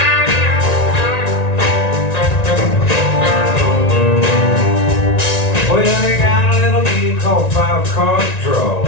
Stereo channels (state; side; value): late; right; 1.9 ms